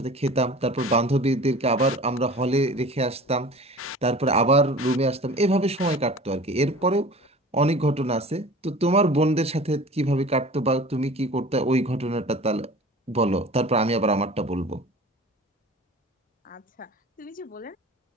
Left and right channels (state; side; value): normal; both; correlation 0.41